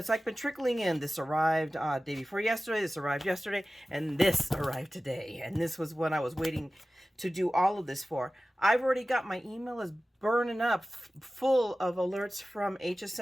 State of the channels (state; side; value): normal; both; correlation 0.96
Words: like been trickling in. This arrived day before yesterday, this arrived yesterday, and this arrived today. And this was when I was waiting to do all of this for. I've already got my email is burning up full of alerts from